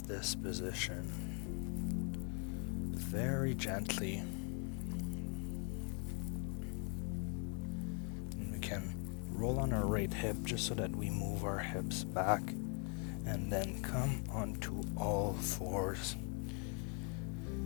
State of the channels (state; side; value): quieter; right; 38.2 dB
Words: this position very gently. And we can roll on our right hip just so that we move our hips back, and then come onto all fours.